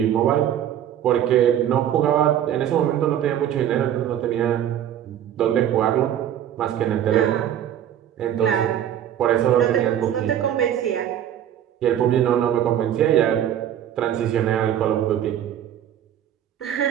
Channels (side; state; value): left; quieter; 10.5 dB